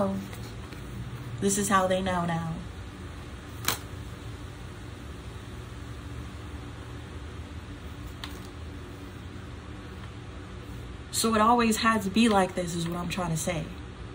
This is how they know now. So it always had to be like this, is what I'm trying to say.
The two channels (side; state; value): both; identical; correlation 1.00